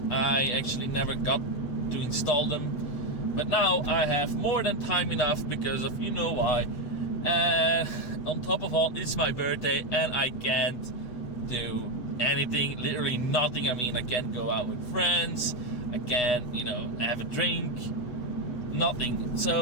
I actually never got to install them, but now I have more than time enough because of you know why. And on top of all, it's my birthday and I can't do anything, literally nothing. I mean, I can't go out with friends, I can't, have a drink, nothing.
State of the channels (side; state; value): right; late; 8.1 ms